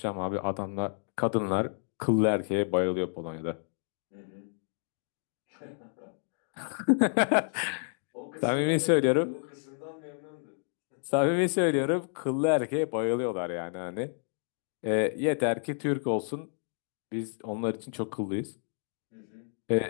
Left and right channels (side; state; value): right; silent; 57 dB below the other